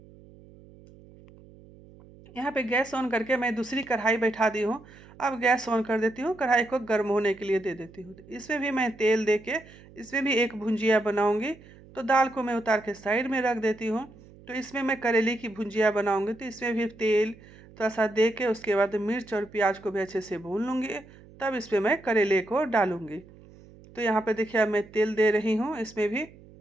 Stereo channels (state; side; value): noise; right; hum, 22 dB below the sound